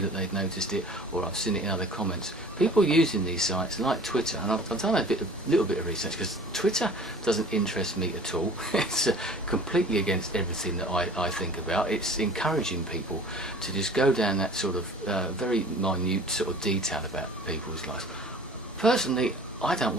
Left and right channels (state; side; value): normal; both; correlation 0.46